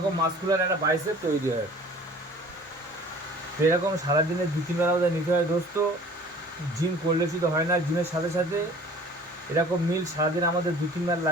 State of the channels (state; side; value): normal; both; correlation 0.48